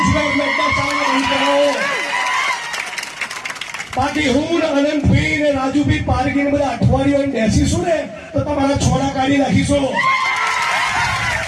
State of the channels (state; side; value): identical; both; correlation 1.00